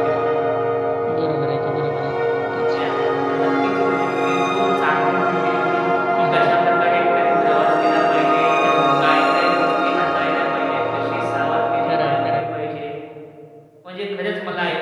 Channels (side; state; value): both; identical; correlation 1.00